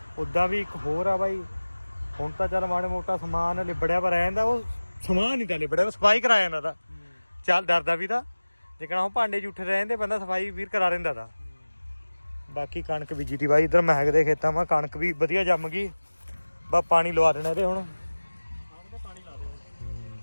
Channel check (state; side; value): inverted; both; correlation -1.00